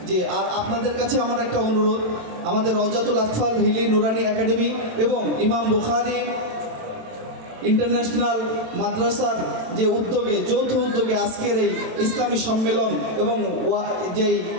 যে আর আপনাদের কাছে আমার একটা অনুরোধ, আমাদের রওজাতুল আতফাল হিলি নুরানি একাডেমি এবং ইমাম বুখারী ইন্টারন্যাশনাল মাদ্রাসার যে উদ্যোগে, যৌথ উদ্যোগে আজকের এই ইসলামী সম্মেলন এবং যেই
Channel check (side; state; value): left; late; 27 ms